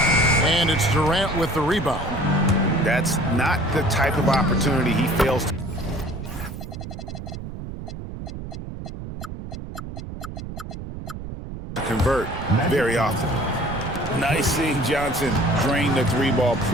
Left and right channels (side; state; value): right; noise; rumble, 9 dB below the sound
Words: And it's Durant with the rebound. That's not the type of opportunity he fails to convert very often. Nice seeing Johnson drain the 3-ball,